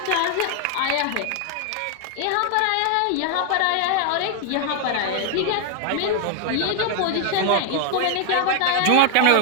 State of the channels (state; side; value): different; both; correlation 0.00